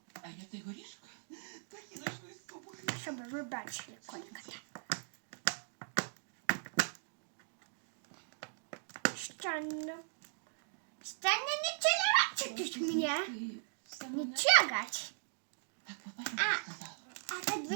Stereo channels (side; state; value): left; silent; digital silence